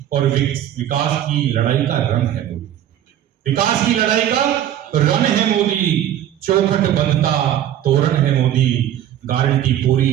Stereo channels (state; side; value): quieter; left; 11.4 dB